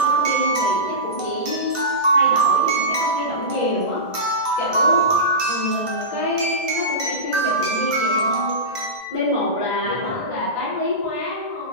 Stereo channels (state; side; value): late; right; 1.5 ms